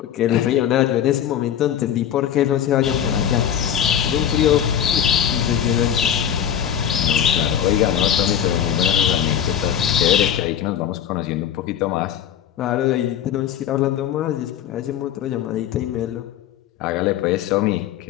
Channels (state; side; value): quieter; right; 9.6 dB